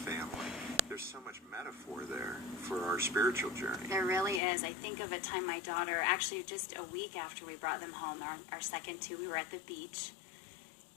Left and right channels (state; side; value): drops out; right; at 4.4 s